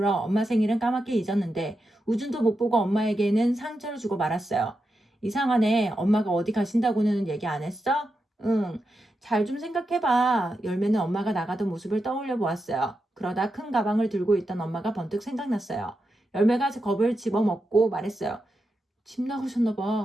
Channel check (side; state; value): both; normal; correlation 0.87